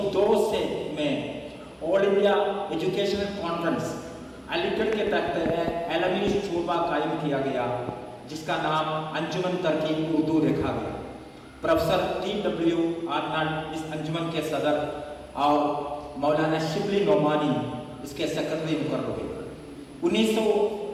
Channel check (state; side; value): identical; both; correlation 1.00